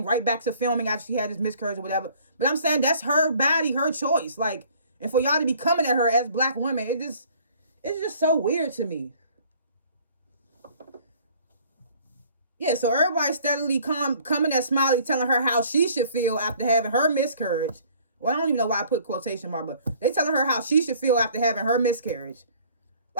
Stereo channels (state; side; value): inverted; both; correlation -0.55